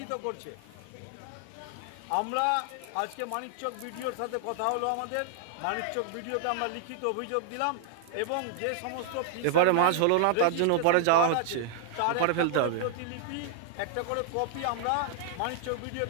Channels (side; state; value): both; different; correlation 0.00